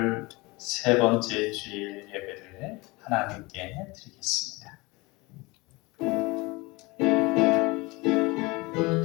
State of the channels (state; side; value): quieter; right; 24.1 dB